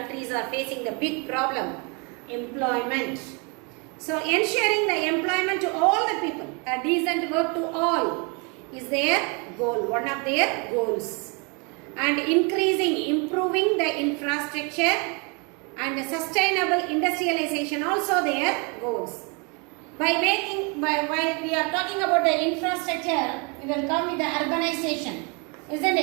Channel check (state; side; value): quieter; left; 32.7 dB